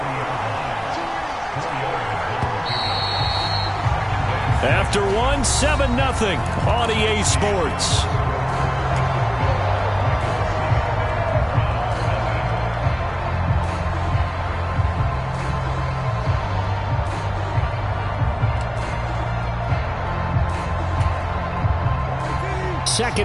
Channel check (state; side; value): identical; both; correlation 1.00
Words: After one, 7-0 on EA Sports. 2nd